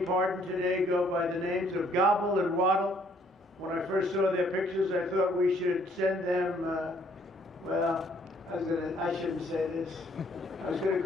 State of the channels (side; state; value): both; normal; correlation 0.64